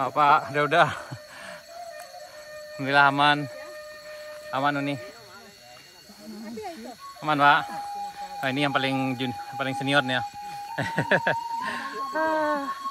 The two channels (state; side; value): identical; both; correlation 1.00